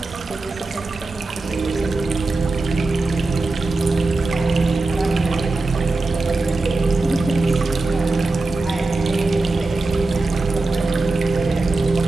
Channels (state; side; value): quieter; left; 3.3 dB